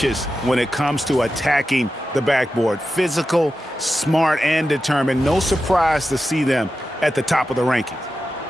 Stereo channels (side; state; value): both; normal; correlation 0.91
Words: when it comes to attacking the backboard. Physical, smart, and determined. No surprise to see them at the top of the rankings.